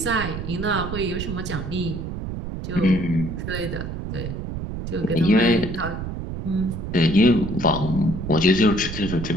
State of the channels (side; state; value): right; noise; rumble, 6 dB below the sound